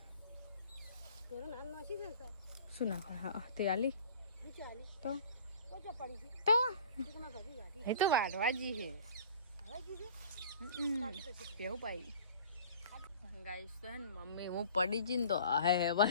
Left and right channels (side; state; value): both; inverted; correlation -0.45